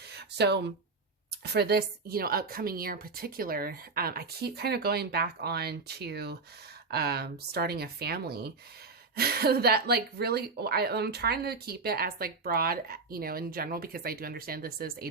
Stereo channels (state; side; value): quieter; left; 4.1 dB